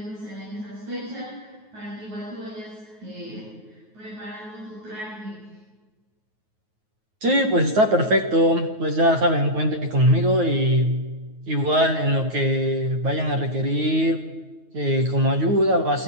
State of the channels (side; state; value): left; late; 9.4 ms